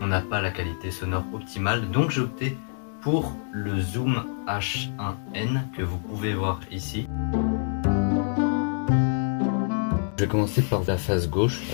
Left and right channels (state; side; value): silent; right; 61 dB below the other